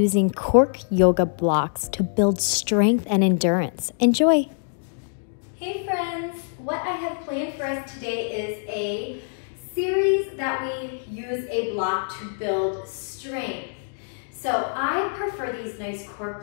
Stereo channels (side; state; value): right; silent; 62 dB below the other